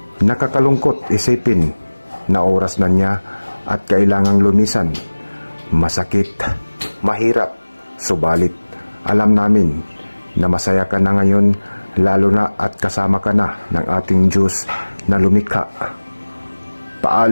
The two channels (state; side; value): inverted; both; correlation -1.00